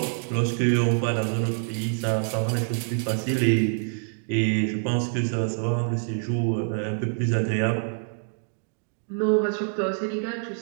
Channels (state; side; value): silent; left; 61 dB below the other